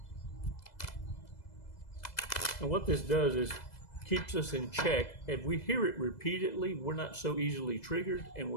And what this does is keeps us in check. If we hear it repeatedly, we're not so easily triggered, and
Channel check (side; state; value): right; late; 2.0 ms